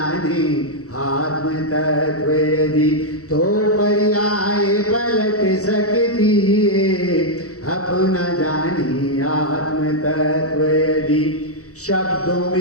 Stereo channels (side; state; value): right; late; 0.65 ms